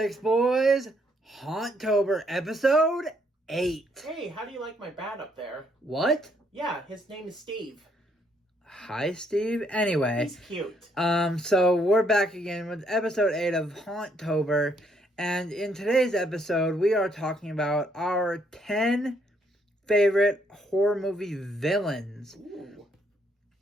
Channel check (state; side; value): normal; both; correlation 0.71